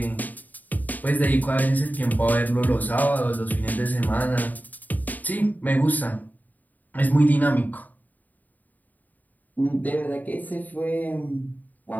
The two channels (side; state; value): right; late; 0.082 ms